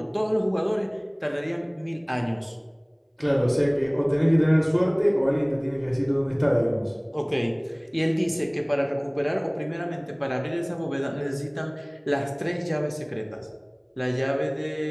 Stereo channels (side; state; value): both; identical; correlation 1.00